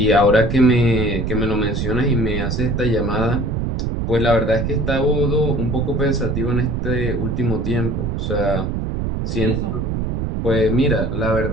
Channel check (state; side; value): noise; right; rumble, 1 dB below the sound